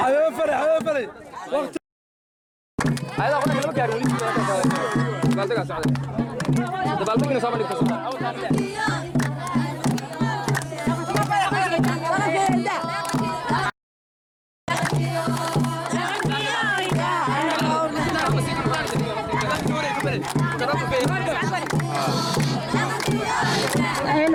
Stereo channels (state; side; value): identical; both; correlation 1.00